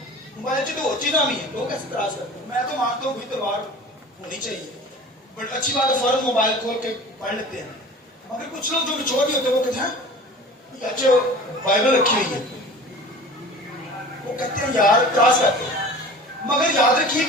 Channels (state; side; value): normal; both; correlation 0.40